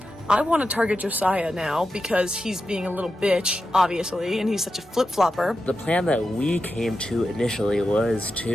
I want to target Josiah now because he's being a little bitch, obviously, and he's such a flip-flopper. The plan that we came to initially was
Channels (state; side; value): normal; both; correlation 0.90